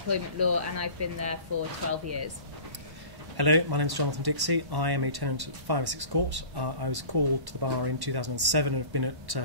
law and I've been there for 12 years. Hello, my name is Jonathan Dixey. I am a tenant at 5 Essex Court. I was called to the bar in 2007 and have been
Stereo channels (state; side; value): late; left; 1.1 ms